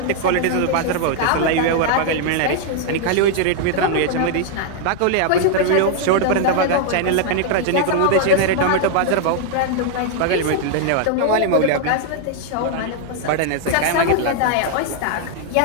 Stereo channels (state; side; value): different; both; correlation 0.00